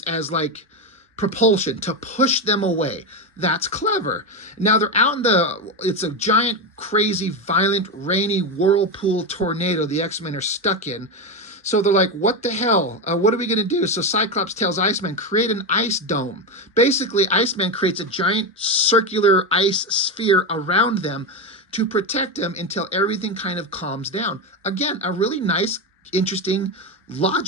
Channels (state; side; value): normal; both; correlation 0.13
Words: as like propulsion to push them away. That's clever. Now they're out in it's a giant, crazy, violent, rainy whirlpool tornado the X-Men are stuck in. So they're like, what the hell? What are we going to do? So Cyclops tells Iceman, create an ice dome. Basically, Iceman creates a giant circular ice sphere around them to protect them until everything kind of calms down. Again, a really nice, interesting,